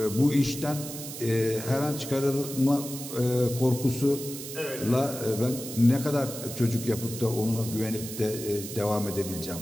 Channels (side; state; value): right; noise; hiss, 10 dB below the sound